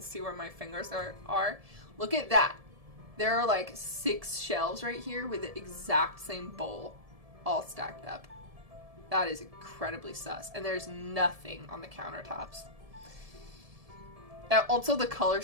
where my fingers are. Look at that. There are, like, 6 shelves right here with the exact same bowl all stacked up. That is incredibly sus. And there's nothing on the countertops. Also, the color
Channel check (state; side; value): late; left; 1.7 ms